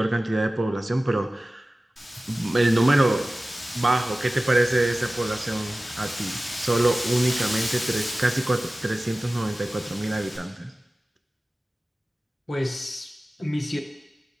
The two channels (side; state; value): both; normal; correlation 0.97